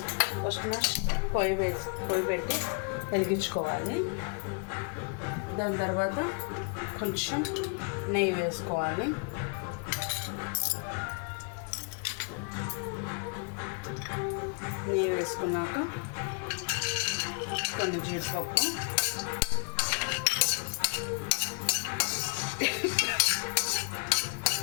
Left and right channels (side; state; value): right; quieter; 38.0 dB